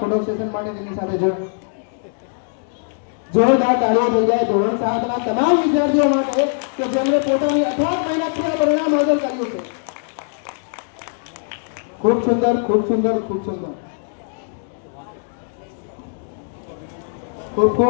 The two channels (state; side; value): silent; right; digital silence